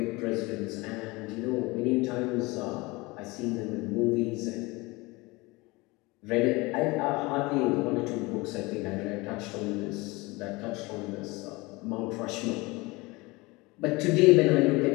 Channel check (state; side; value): quieter; right; 23.6 dB